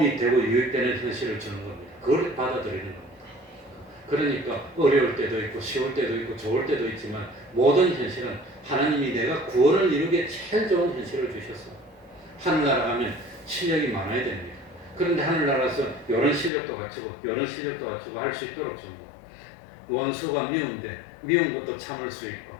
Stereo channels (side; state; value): right; drops out; at 16.5 s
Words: 되고 유익되는 현실을 주는 겁니다. 그걸 받아들이는 겁니다. 그러니까 어려울 때도 있고 쉬울 때도 있고 좋을 때도 있지만 모든 현실은 하나님이 내가 구원을 이루기에 제일 좋은 현실을 주셨어. 하늘나라 가면 실력이 많아야 됩니다. 그런데 하늘나라에서 이런 실력도 갖추고 이런 실력도 갖추고 할 수 있도록 줍니다. 원수가 미운데 미운 것도 참을 수 있고